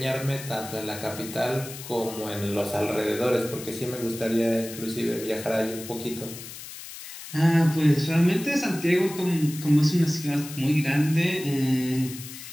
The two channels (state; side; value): noise; left; hiss, 12 dB below the sound